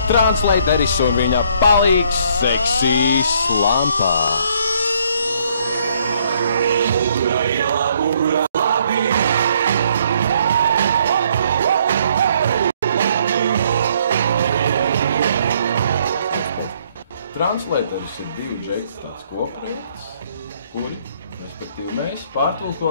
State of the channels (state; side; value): inverted; both; correlation -0.67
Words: Translateris un viņa palīgs Seksīs Lampā. Translateris ir divi džeiti tāds kopprojekts, kuri, respektīvi, mēs